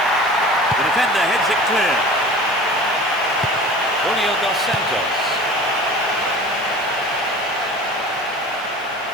The defender heads it clear. Julio dos Santos.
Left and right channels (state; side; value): normal; both; correlation 0.40